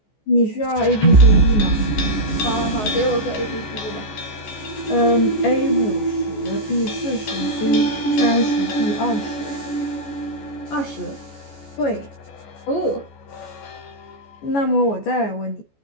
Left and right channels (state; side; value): late; right; 14 ms